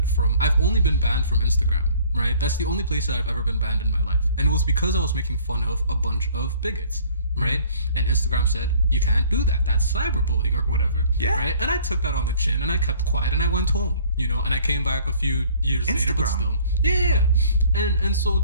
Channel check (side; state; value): both; inverted; correlation -0.54